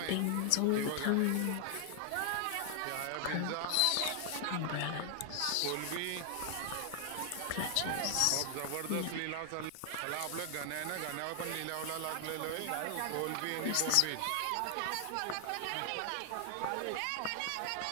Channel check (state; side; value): different; both; correlation 0.00